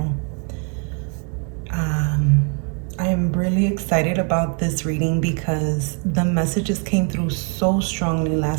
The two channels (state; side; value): quieter; left; 37.6 dB